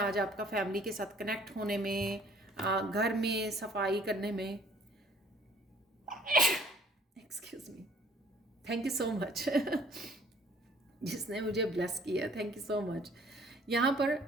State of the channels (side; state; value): both; normal; correlation 0.57